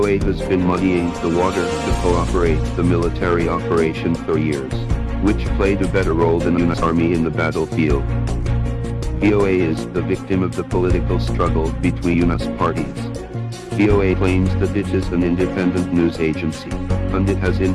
has been muddying the water to cooperate the military operation for years, which played a better role than US Army in the battlefield. VOA is the victim of the political struggle between US parties. VOA claims that it is an independent news agency, and it has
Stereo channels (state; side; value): identical; both; correlation 1.00